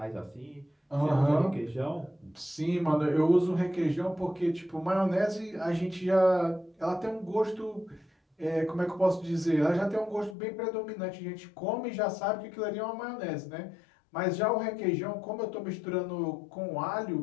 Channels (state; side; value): drops out; right; at 10.4 s